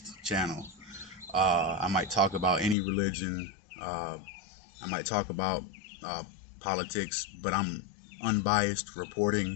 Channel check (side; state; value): right; drops out; at 2.8 s